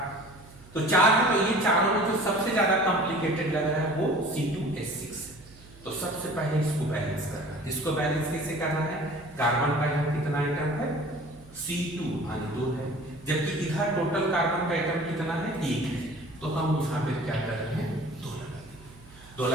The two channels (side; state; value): right; noise; hum, 22 dB below the sound